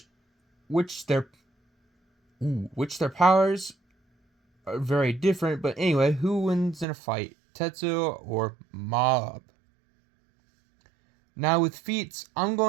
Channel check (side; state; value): left; drops out; at 6.9 s